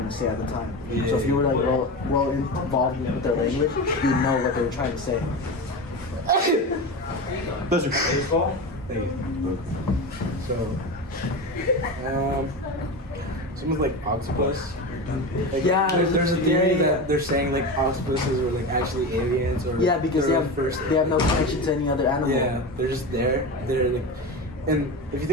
to say at the time. So if you were like well involved with their language, you know what they were trying to say. Pleasure. Thank you. So, someone's like octopus. Like, Yeah, there's a theory yeah. that they're saying like octopuses were like actually aliens, or Yeah, because they have no connection to any other animal. Yeah, they're just there. They're like, and if you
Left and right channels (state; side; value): normal; both; correlation 0.24